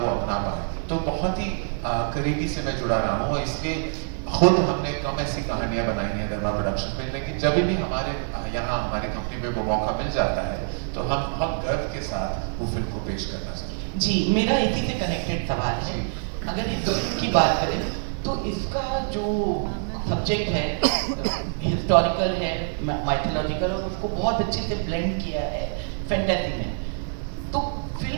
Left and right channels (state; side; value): silent; left; digital silence